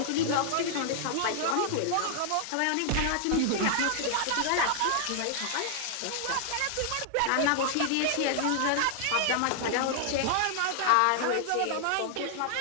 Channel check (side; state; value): both; different; correlation 0.00